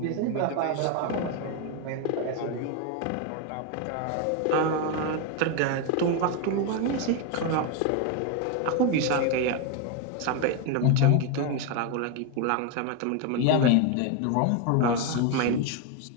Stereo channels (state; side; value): different; both; correlation 0.02